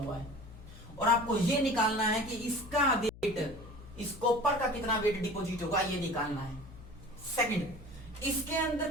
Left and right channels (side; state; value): left; noise; hum, 18 dB below the sound